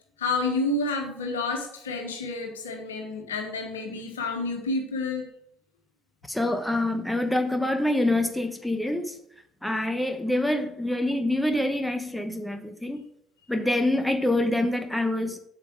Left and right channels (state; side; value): normal; both; correlation 0.69